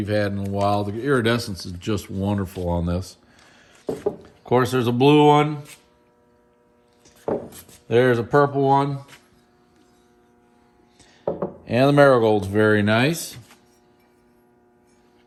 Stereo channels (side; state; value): both; identical; correlation 1.00